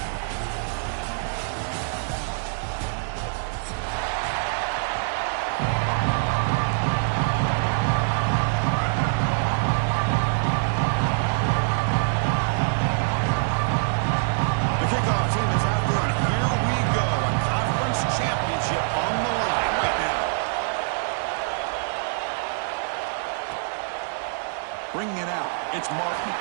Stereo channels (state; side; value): silent; left; digital silence